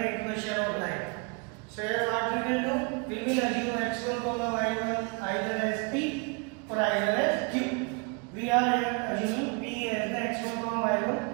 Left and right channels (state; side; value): quieter; left; 32.4 dB